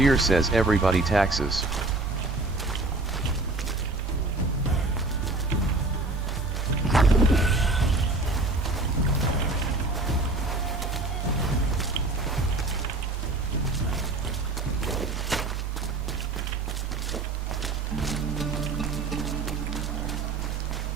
says everybody taxes.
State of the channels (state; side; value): quieter; left; 3.1 dB